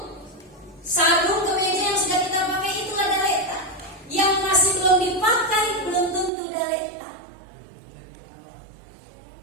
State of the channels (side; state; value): left; drops out; at 6.3 s